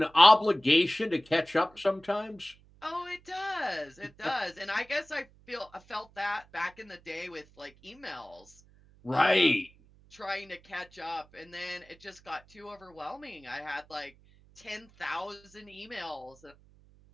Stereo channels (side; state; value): right; noise; hum, 27 dB below the sound